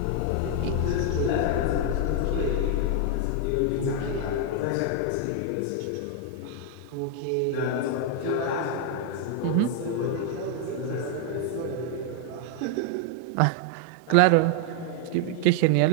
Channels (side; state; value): both; different; correlation 0.00